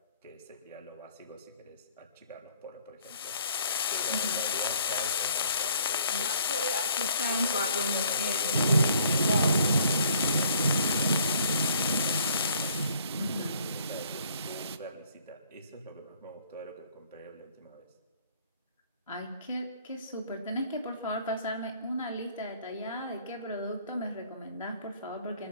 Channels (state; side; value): inverted; both; correlation -0.60